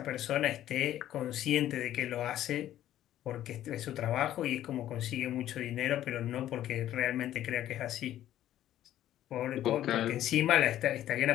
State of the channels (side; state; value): right; quieter; 12.6 dB